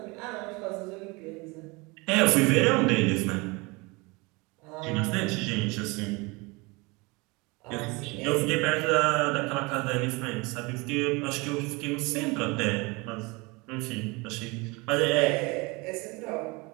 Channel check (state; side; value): quieter; left; 26.1 dB